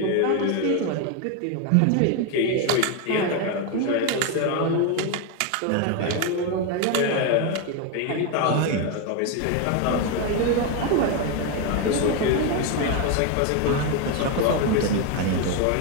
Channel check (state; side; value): different; both; correlation 0.02